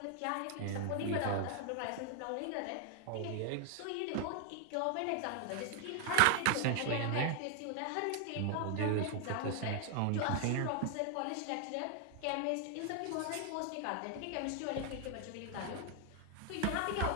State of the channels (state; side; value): different; both; correlation 0.00